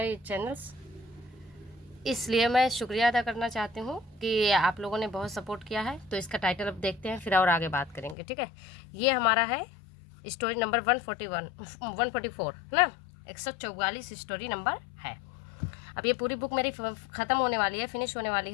channels. इसलिए मैं शुक्रिया अदा करना चाहती हूँ कि आप लोगों ने बहुत सपोर्ट किया है। तो इसका टाइटल अब देखते हैं, फिर और आगे बात करेंगे, ठीक है। ये हमारा है स्टोरी नंबर 144 ना, 144 स्टोरी नंबर है। अब ये पूरी बुक मेरी ख़त्म होने वाली है, फिनिश होने वाली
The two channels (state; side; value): drops out; right; at 8.2 s